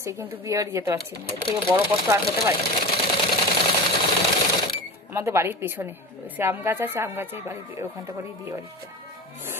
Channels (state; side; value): normal; both; correlation 0.29